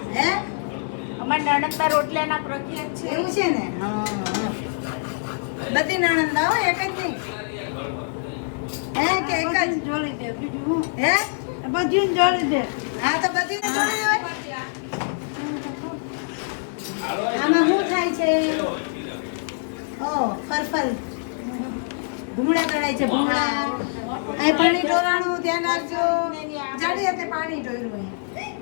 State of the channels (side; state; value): right; silent; digital silence